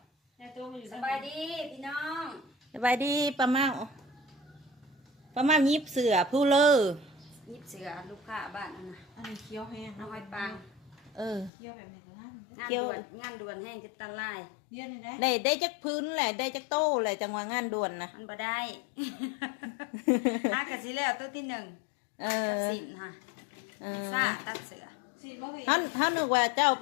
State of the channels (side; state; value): right; drops out; at 11.5 s